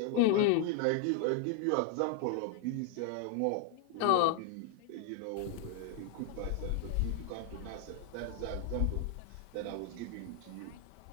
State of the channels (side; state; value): both; different; correlation 0.00